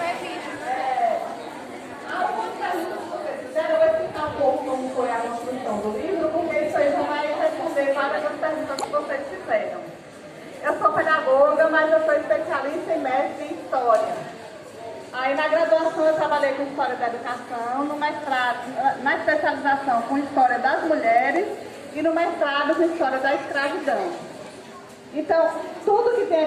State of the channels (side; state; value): both; identical; correlation 1.00